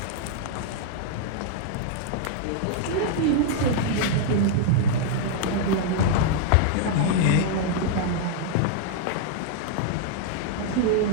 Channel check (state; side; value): different; both; correlation -0.01